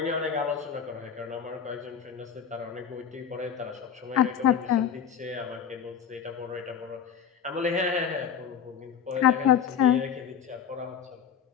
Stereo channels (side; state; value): right; quieter; 7.9 dB